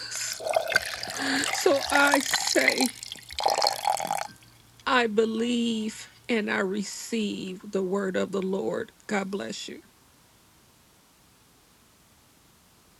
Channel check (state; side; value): identical; both; correlation 1.00